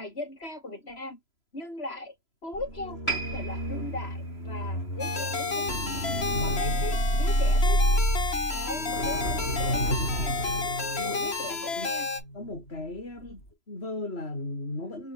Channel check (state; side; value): late; right; 3.0 ms